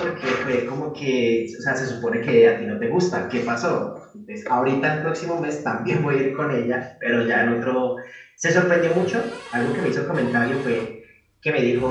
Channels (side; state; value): both; identical; correlation 1.00